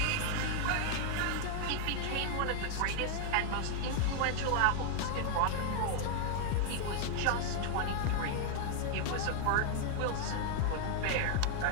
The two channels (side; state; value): both; different; correlation 0.00